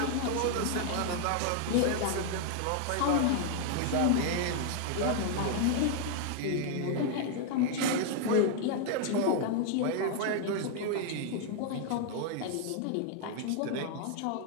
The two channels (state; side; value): different; both; correlation 0.00